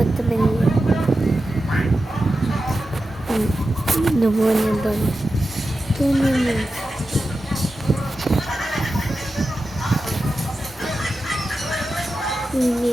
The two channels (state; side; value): normal; both; correlation 0.92